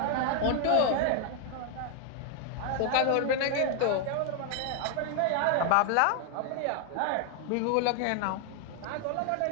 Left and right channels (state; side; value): different; both; correlation 0.00